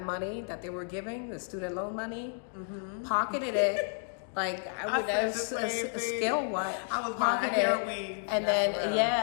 money that they were giving, the student loan money, pocketed it. I would have skill what I was buying hair weave, and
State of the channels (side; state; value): right; silent; 57 dB below the other